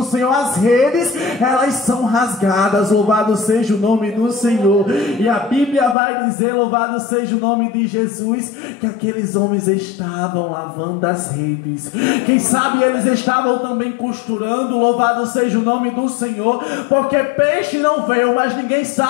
Senhor, as redes, elas são rasgadas, louvado seja o nome do Senhor. E a Bíblia vai dizer, louvado seja o nome de Jesus, que aqueles homens estavam lavando as redes. Quem sabe eles estavam também costurando, louvado seja o nome do Senhor, porque peixe não veio, mas ninguém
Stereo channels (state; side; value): drops out; right; at 6.0 s